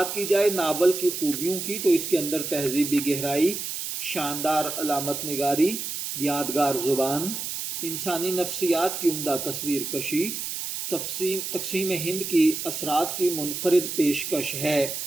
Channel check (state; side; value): noise; right; hiss, 5 dB below the sound